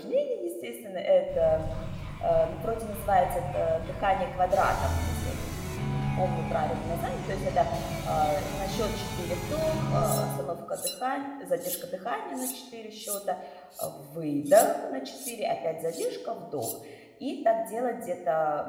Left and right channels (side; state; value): both; identical; correlation 1.00